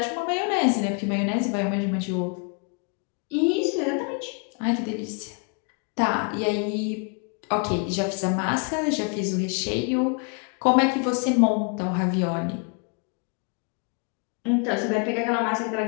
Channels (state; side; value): quieter; right; 37.3 dB